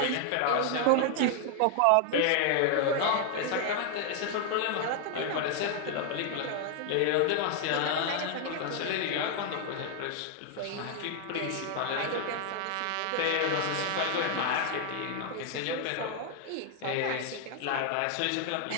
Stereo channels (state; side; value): different; both; correlation 0.00